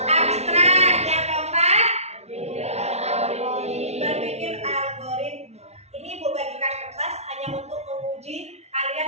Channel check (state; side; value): late; left; 0.31 ms